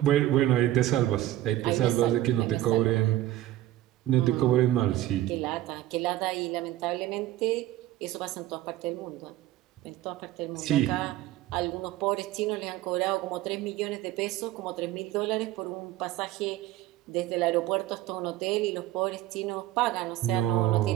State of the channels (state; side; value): quieter; left; 14.5 dB